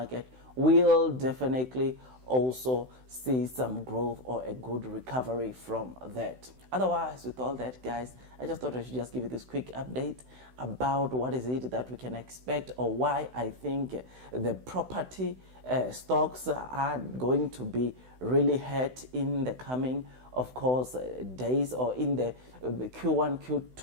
will definitely also see some growth or a good recovery from that. Otherwise, with all that, guys, I just thought I should just give you this quick update about what is it that we can expect, or why I think the property stocks are going to be really hurt in the coming, of course, days, or in the Q1,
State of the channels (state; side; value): late; left; 16 ms